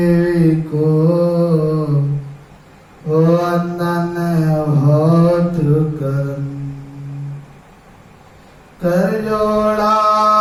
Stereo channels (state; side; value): identical; both; correlation 1.00